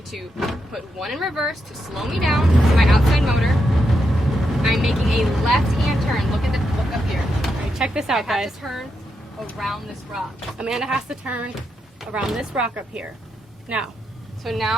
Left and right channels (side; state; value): both; normal; correlation 0.83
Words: to put one in reverse to slow me down to my outside motor. I'm making a left-hand turn. Look up here. All right, check this out, guys. I have to turn around this rock. Amanda has to turn around this rock up here. Now. So